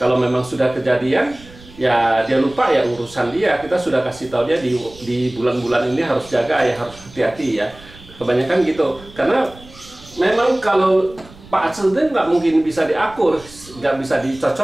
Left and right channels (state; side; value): noise; right; rumble, 21 dB below the sound